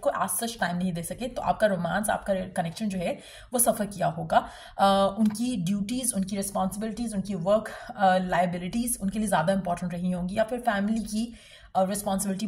को एज सच टाइम नहीं दे सके, तो आपका रोमांस, आपका कनेक्शन जो है वो सफ़र किया होगा। उनकी ड्यूटीज़, उनकी रिस्पॉन्सिबिलिटीज़, उनकी वर्क लाइबिलिटीज़ उनके लिए ज़्यादा इंपॉर्टेंट रही होंगी, या फिर फैमिली की रिस्पॉन्सिबिलिटी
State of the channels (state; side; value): identical; both; correlation 1.00